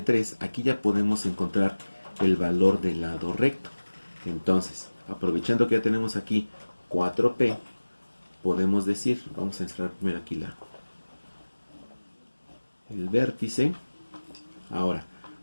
3, aquí ya podemos encontrar el valor del lado recto. Entonces, aprovechando que ya tenemos aquí 4P, podemos decir, vamos a encerrar primero aquí el vértice. Ahora,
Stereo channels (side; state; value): both; inverted; correlation -1.00